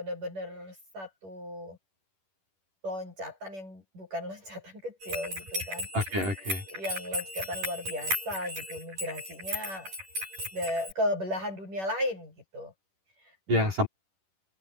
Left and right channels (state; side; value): late; left; 10 ms